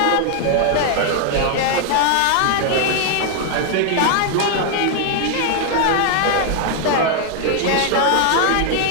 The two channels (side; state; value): both; different; correlation 0.00